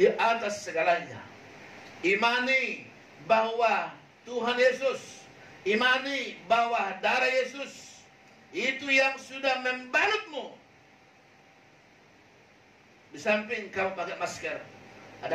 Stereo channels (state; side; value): identical; both; correlation 1.00